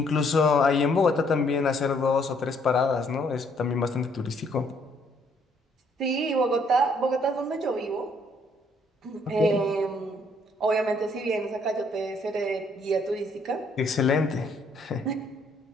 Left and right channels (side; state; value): both; normal; correlation 0.66